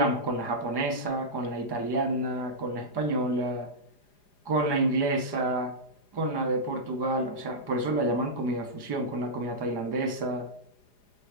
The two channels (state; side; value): late; right; 4.9 ms